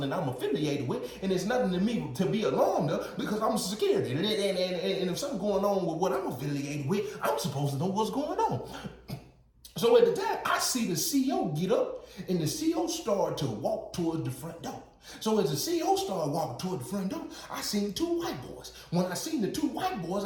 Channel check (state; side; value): identical; both; correlation 1.00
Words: that I'm affiliated with, and it's nothing to me to be alarmed of because I'm security. And if something going on with what I'm affiliated with, I'm supposed to know what's going on. So at the time, I see the CEO get up and the CEO start to walk towards the front door. So as the CEO started walking toward the front door, I seen 2 white boys. When I seen the 2 white boys,